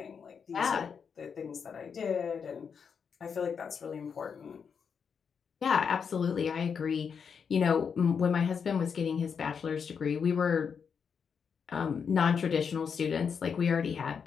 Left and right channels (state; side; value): quieter; right; 6.5 dB